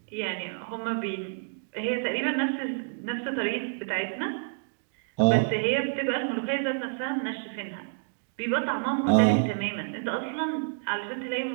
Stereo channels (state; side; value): silent; left; digital silence